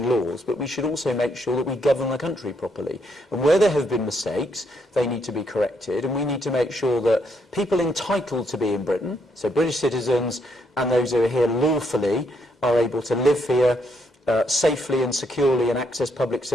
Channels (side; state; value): both; normal; correlation 0.75